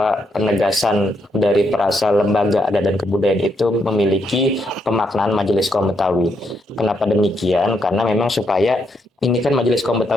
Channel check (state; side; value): normal; both; correlation 0.77